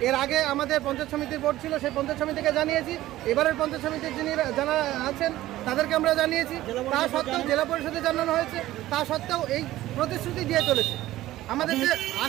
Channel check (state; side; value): quieter; left; 15.4 dB